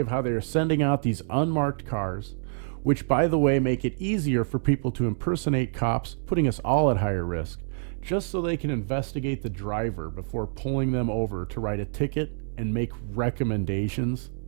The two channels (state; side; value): silent; left; digital silence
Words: how they are sending out these unmarked cars, which, by the way, make it easier for people to impersonate cops, putting us all at higher risk, just so they can investigate the driver before pulling them over to write a ticket and make recommendations.